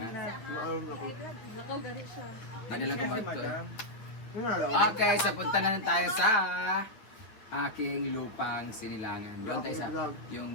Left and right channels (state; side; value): late; right; 9.1 ms